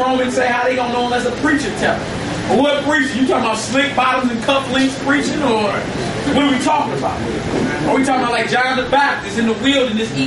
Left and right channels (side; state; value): both; identical; correlation 1.00